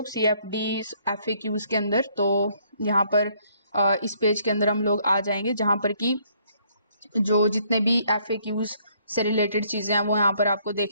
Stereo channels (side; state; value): both; inverted; correlation -0.66